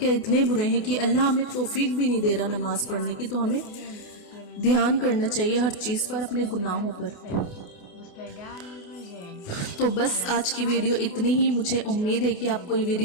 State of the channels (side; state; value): right; late; 28 ms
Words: اتنے برے ہیں کہ اللہ ہمیں توفیق بھی نہیں دے رہا نماز پڑھنے کی۔ تو ہمیں دھیان کرنا چاہیے ہر چیز پر، اپنے گناہوں پر۔ تو بس آج کی ویڈیو اتنی ہی۔ مجھے امید ہے کہ آپ کو یہ